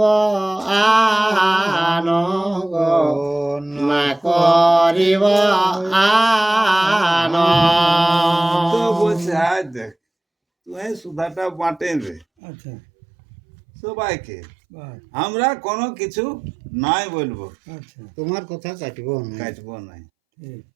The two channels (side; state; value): left; drops out; at 12.2 s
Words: আন গো, না করিব আন। তো বলছে আজ দেখ তুই সুধাটা বাঁটে দে আচ্ছা সবাইকে, বাহ। আমরা কোনো কিছু নাই বলবো, আচ্ছা তোমার কথা কাটব না। কাটবো নাই। ঠিক